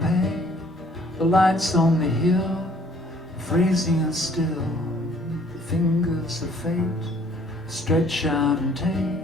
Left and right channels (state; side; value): normal; both; correlation 0.59